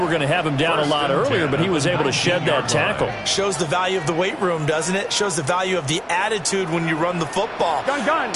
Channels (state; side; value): identical; both; correlation 1.00